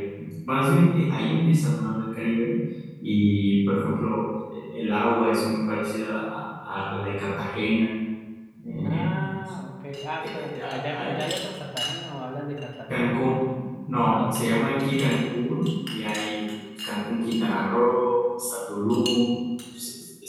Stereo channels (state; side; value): identical; both; correlation 1.00